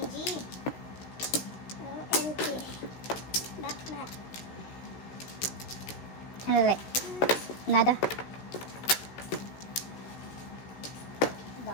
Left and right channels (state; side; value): late; right; 16 ms